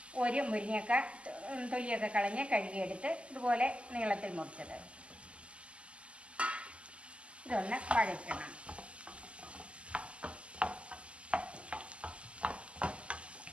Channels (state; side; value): late; left; 0.055 ms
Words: ഒരു മുരിങ്ങക്ക തൊലിയൊക്കെ കളഞ്ഞ് കഴുകിയെടുത്ത് ഇതുപോലെ നീളത്തിൽ മുറിച്ചത്, ഇതൊന്ന് വഴറ്റണം.